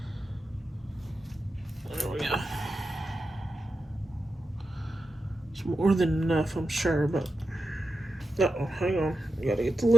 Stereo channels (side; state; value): both; normal; correlation 0.90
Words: There we go. It's more than enough, I'm sure, but... Uh-oh, hang on. You gotta get the